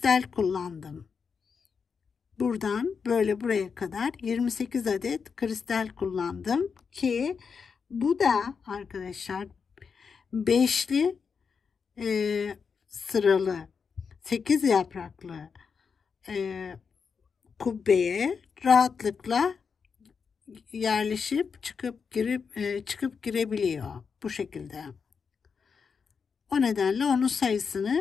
kullandım. Buradan böyle buraya kadar 28 adet kristal kullandım ki bu da arkadaşlar beşli sıralı 8 yapraklı kubbeye rahatlıkla yerleşip çıkıp girebiliyor bu şekilde. O nedenle onun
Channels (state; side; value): quieter; right; 5.8 dB